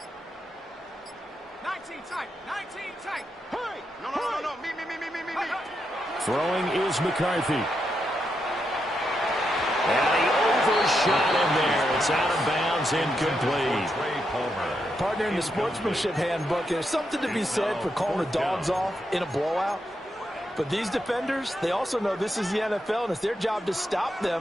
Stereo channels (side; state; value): both; normal; correlation 0.83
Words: 19 tight. 19 tight. Hurry. No. Me. Throwing is McCarthy. And he overshot him there. It's out of bounds, incomplete. Partner, in the sportsmanship handbook, there's something to be said for calling the dogs off in a blowout. But these defenders, they also know this is the NFL, and it's their job to stop